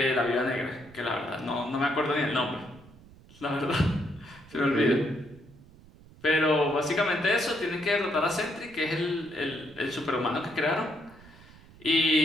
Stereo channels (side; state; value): right; noise; rumble, 23 dB below the sound